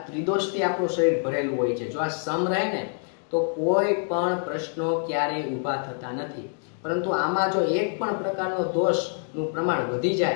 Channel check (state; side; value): silent; right; 61 dB below the other